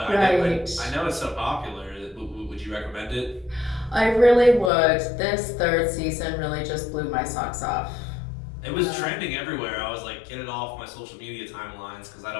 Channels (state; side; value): drops out; right; at 4.7 s